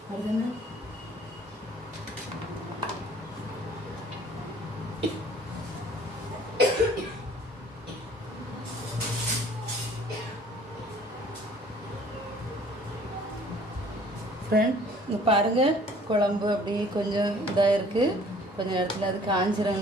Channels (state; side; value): normal; both; correlation 0.54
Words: அதுன்னு ஃப்ரெண்ட் இங்கே பாருங்கள், குழம்பு அப்படியே கொஞ்சம் இதாக இருக்குது. கொஞ்சம் இடத்துல அது